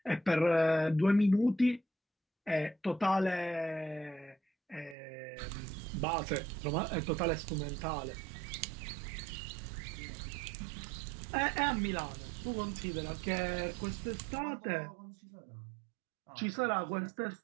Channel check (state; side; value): drops out; left; at 5.0 s